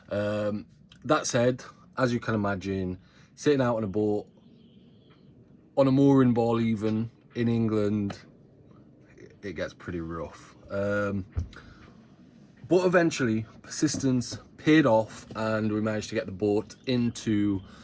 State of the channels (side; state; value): both; identical; correlation 1.00